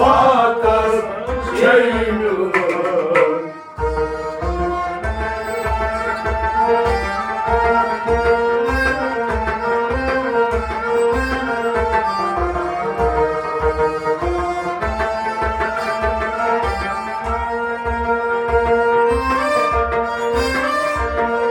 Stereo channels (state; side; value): identical; both; correlation 1.00